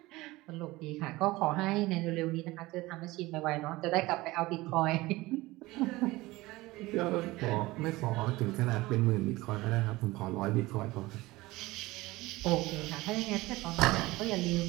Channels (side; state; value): left; quieter; 19.9 dB